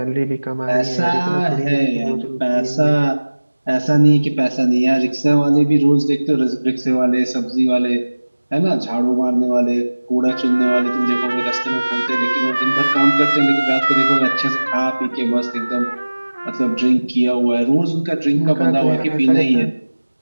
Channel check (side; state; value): both; inverted; correlation -1.00